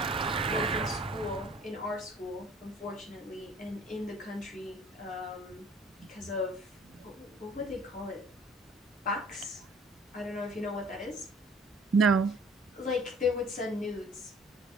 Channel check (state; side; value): normal; both; correlation 0.52